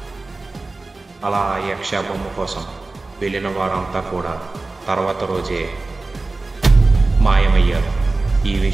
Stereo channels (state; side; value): quieter; left; 3.4 dB